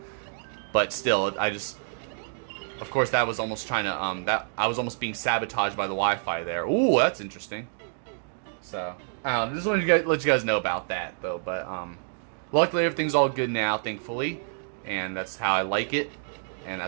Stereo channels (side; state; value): left; silent; digital silence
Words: But still, of course, that was almost trying to I was almost being sabotaged by the Wi-Fi there. Ooh, that's interesting. So just wanted to let you guys know about that though. But luckily everything's all good now, thankfully, and that's how I like it. And